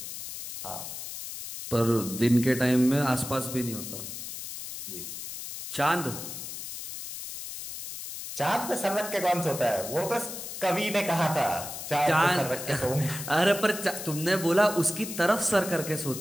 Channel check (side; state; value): left; noise; hiss, 8 dB below the sound